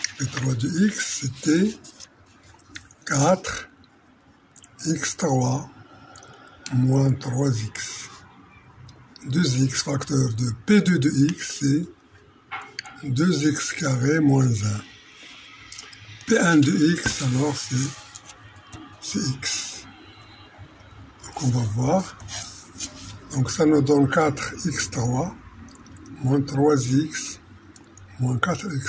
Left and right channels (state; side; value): identical; both; correlation 1.00